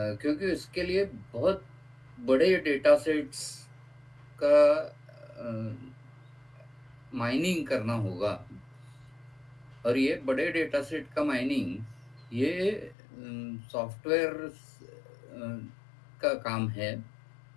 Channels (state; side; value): drops out; right; at 13.0 s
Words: इसके लिए बहुत बड़े डेटा सेट्स का माइनिंग करना होगा। और ये बड़े डेटा सेट का माइनिंग ये सॉफ्टवेयर का काम है।